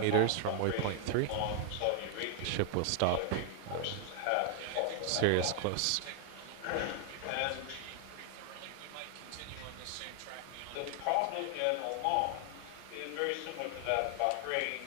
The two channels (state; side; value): different; both; correlation 0.00